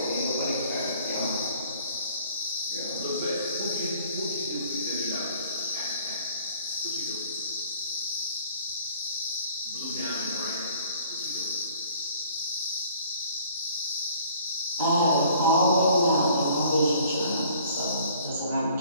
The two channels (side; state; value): both; inverted; correlation -0.55